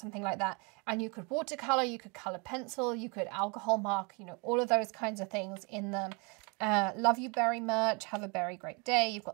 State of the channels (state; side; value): quieter; left; 31.6 dB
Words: like that, and you could watercolour, you could colour pencil, you could alcohol mark, you know, all of those kinds of things in them. Love you berry merch, have a very great day. You've